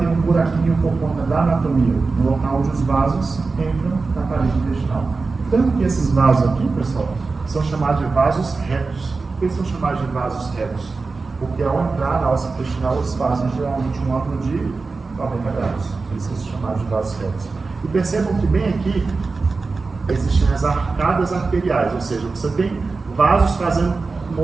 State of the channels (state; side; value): quieter; left; 4.1 dB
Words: um buraquinho por conta da anatomia, no local onde os vasos entram na parede intestinal. Tanto que esses vasos aqui, pessoal, são chamados de vasos retos. Por que são chamados de vasos retos? Porque ao entrar na alça intestinal, eles fazem geralmente um ângulo de 90 graus. Por isso são chamados de vasos retos. E percebam que bem aqui existem as arcadas arteriais, ou seja, você tem vasos fazendo o